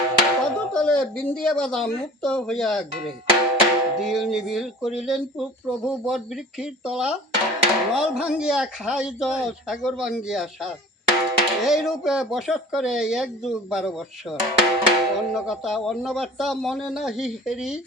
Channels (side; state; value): both; normal; correlation 0.44